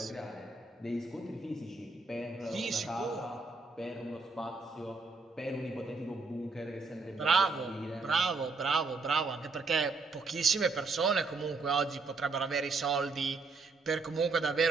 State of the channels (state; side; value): quieter; left; 3.9 dB